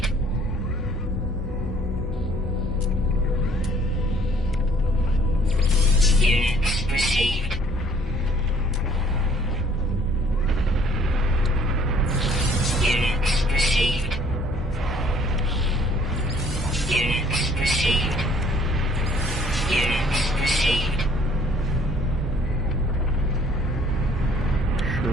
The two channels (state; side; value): normal; both; correlation 0.58